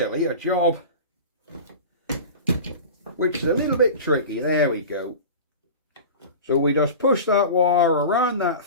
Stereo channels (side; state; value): both; inverted; correlation -0.33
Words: a job which is a little bit tricky. There we go. So we just push that wire around that